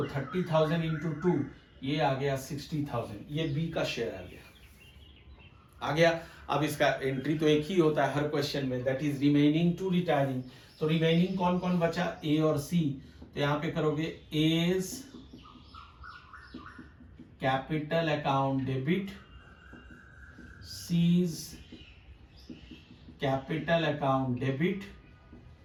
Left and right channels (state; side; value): identical; both; correlation 1.00